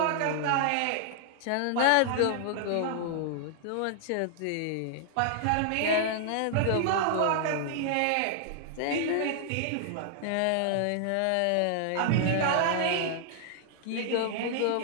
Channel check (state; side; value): different; both; correlation -0.01